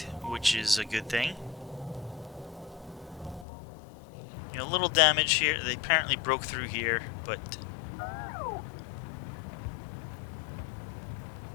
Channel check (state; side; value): drops out; right; at 3.5 s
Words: which is a good thing. You know, a little damage here. They apparently broke through here, but